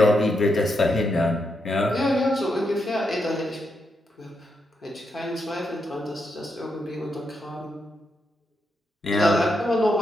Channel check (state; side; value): normal; both; correlation 0.82